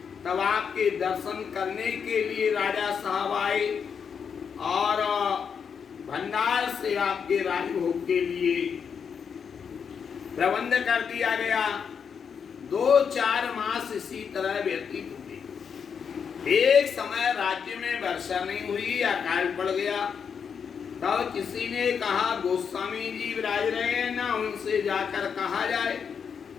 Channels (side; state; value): right; quieter; 6.8 dB